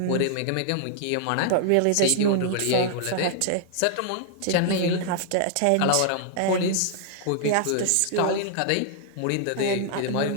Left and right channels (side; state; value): both; different; correlation -0.01